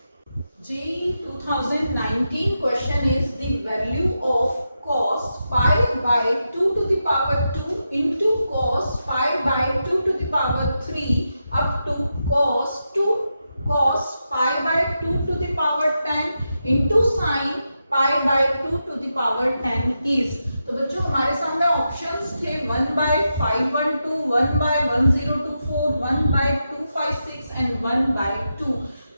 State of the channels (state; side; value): inverted; both; correlation -0.87